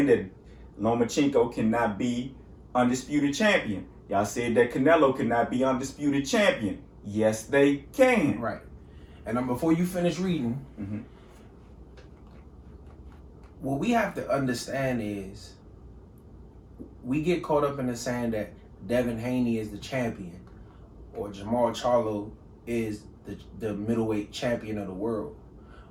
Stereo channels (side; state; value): both; identical; correlation 1.00